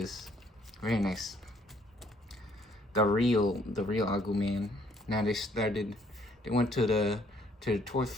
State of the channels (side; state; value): both; normal; correlation 0.65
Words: Very nice. The real Agumon. Now they went to the toy